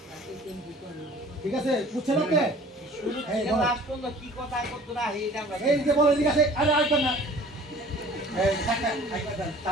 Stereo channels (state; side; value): normal; both; correlation 0.48